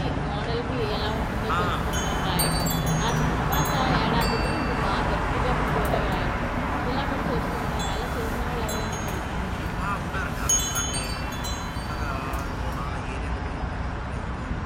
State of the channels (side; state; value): both; identical; correlation 1.00